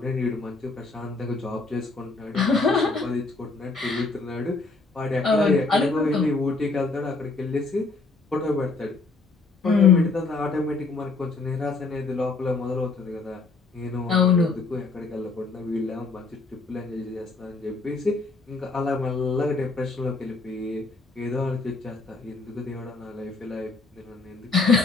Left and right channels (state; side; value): quieter; right; 3.8 dB